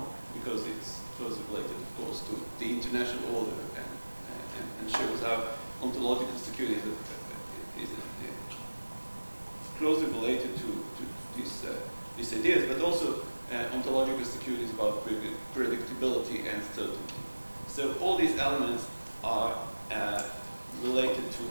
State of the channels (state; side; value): inverted; both; correlation -1.00